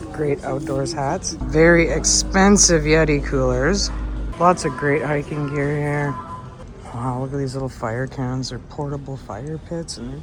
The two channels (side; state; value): both; identical; correlation 1.00